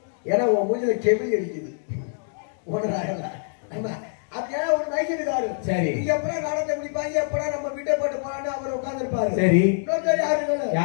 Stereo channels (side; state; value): right; silent; digital silence